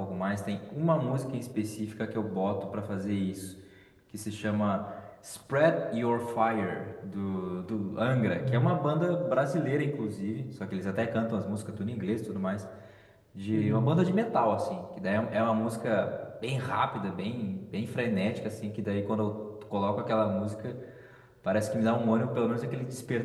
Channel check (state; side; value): identical; both; correlation 1.00